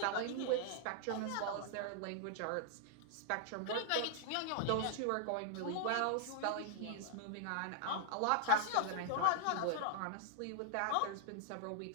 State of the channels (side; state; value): both; different; correlation -0.01